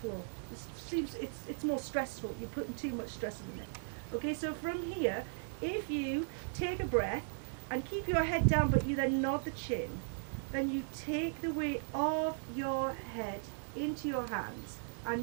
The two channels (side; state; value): left; silent; digital silence